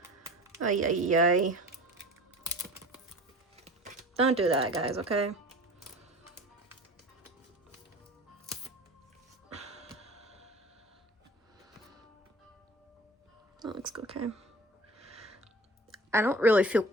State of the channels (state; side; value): normal; both; correlation 0.40